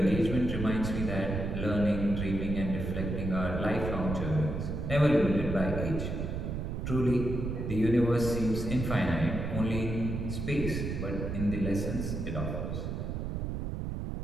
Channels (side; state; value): right; noise; rumble, 3 dB below the sound